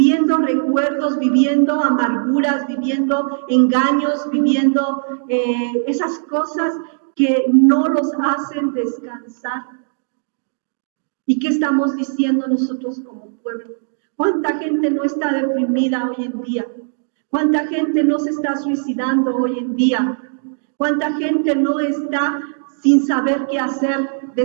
recuerdos, viviendo amarguras, viviendo engaños, viviendo esas cosas que no los hacen descansar? ¿Y qué estamos diciendo nosotros como pueblo? ¿Cuánta gente no está deprimida hoy en día? ¿Cuánta gente no se está suicidando hoy en día? ¿Cuánta gente no está sin saber qué hacer,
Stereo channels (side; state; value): left; silent; digital silence